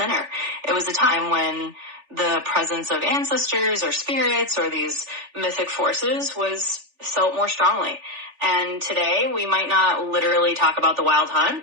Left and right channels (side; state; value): left; late; 3.4 ms